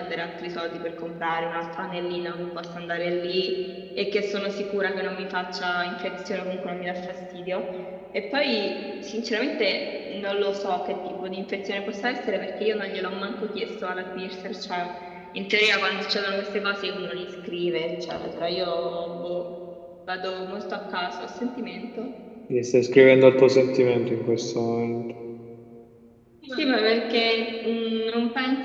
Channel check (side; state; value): both; identical; correlation 1.00